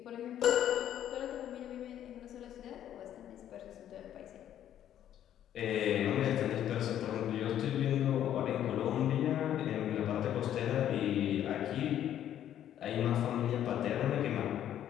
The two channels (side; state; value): right; quieter; 10.9 dB